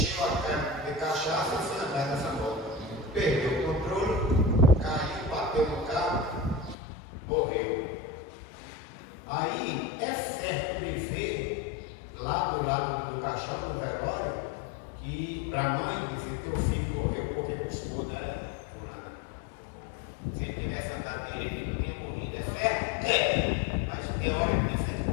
lado do caixão, do velório, que para a mãe dizer que teu filho morreu porque custou, né? Se ele tivesse andado direito, ele não tinha morrido, é certo? É, mas teoricamente é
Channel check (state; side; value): drops out; right; at 6.8 s